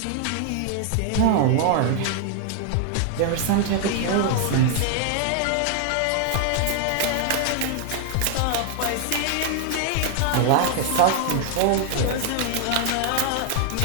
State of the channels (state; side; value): different; both; correlation 0.00